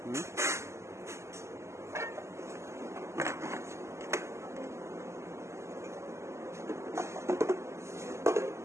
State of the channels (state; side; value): late; left; 0.13 ms